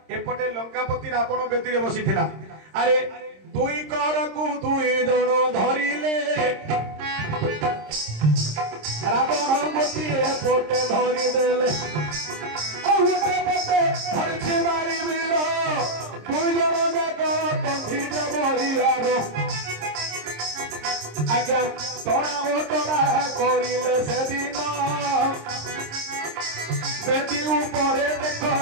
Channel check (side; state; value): left; late; 26 ms